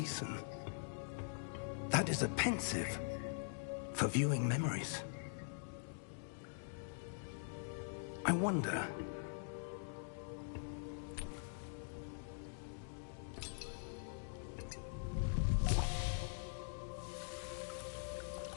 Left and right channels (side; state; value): right; silent; digital silence